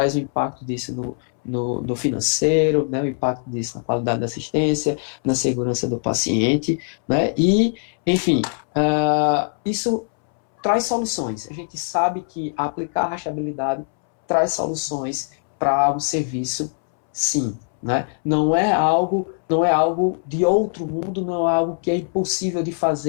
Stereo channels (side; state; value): right; silent; 64 dB below the other